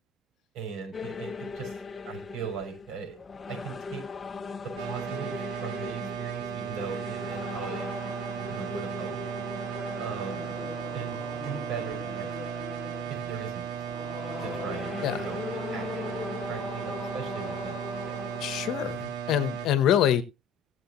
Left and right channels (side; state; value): both; normal; correlation 0.45